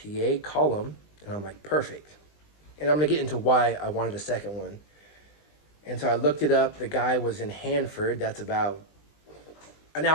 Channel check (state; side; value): late; right; 20 ms